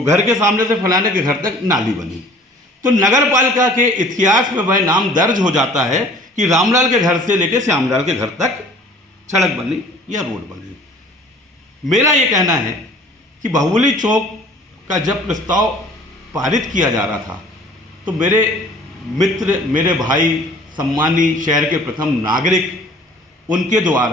घर के सामने से फलाने के घर तक नाली बनी। तो नगर पालिका के इतिहास में वह नाम दर्ज हो जाता है कि रामलाल के घर से लेकर श्यामलाल के घर तक सड़क बनी या रोड बनी। मेरा ये कहना है कि बाहुबली चौक का जब प्रस्ताव पारित किया जा रहा था तो मेरे मित्र, मेरे भाई, सम्मानी शहर के प्रथम नागरिक, उनके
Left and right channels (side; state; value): both; normal; correlation 0.50